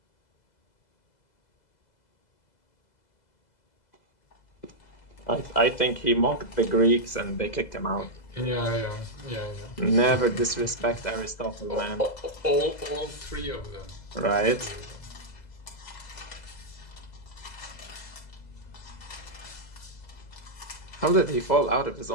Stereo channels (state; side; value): late; right; 2.0 ms